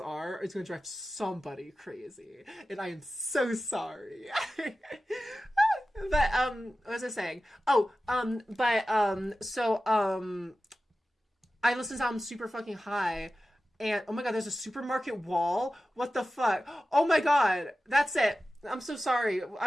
are, it's gonna drive somebody crazy, and I am so sorry. But what was I saying? I listened to album super fucking high, and oh my god, there's a supermarket wall. What the fuck? Oh my god, that's it. I'm so sorry.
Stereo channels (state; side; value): normal; both; correlation 0.94